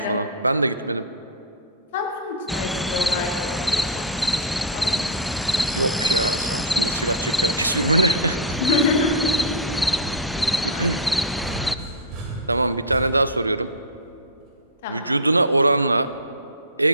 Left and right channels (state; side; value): normal; both; correlation -0.11